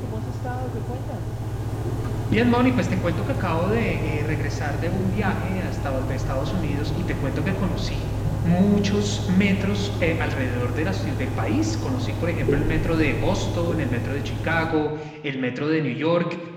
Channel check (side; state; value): both; identical; correlation 1.00